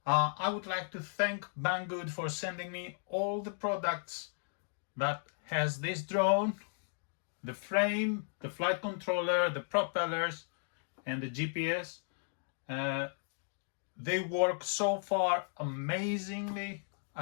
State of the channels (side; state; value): right; silent; digital silence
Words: I would like to thank Banggood for sending me all the products that has this drone, the frame, the flight controller, the propellers, and the GPS. They work so far amazingly.